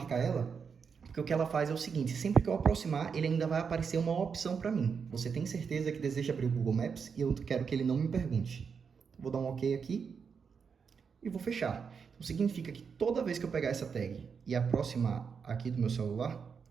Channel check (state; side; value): quieter; left; 6.1 dB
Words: ela, porque o que ela faz é o seguinte, sempre que eu aproximar, ele ainda vai aparecer uma opção para mim. Você tem certeza que deseja abrir o Google Maps e eu quero que ele não me pergunte. Vou dar um OK aqui e vou fechar. Então significa que toda vez que eu pegar essa tag e aproximar aqui do meu celular,